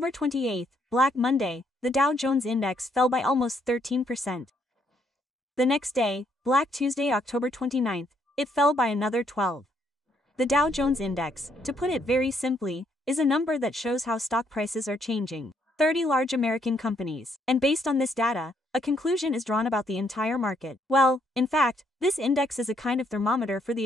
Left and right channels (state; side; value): normal; both; correlation 0.71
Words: 28, Black Monday, the Dow Jones Index fell by almost 13%. The next day, Black Tuesday, October 29, it fell by another 12%. The Dow Jones Index, to put it very simply, is a number that shows how stock prices are changing. 30 large American companies, and based on this data, a conclusion is drawn about the entire market. Well, in fact, this index is a kind of thermometer for